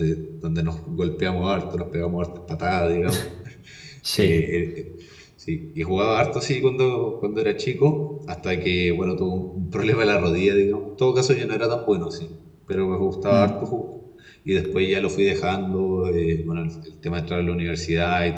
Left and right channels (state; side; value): identical; both; correlation 1.00